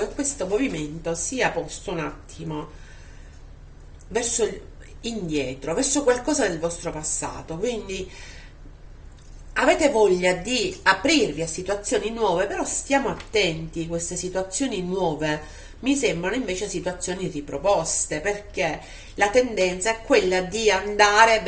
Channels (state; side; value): identical; both; correlation 1.00